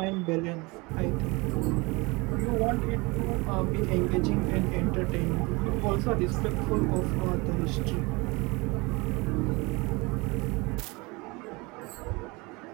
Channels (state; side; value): quieter; left; 25.5 dB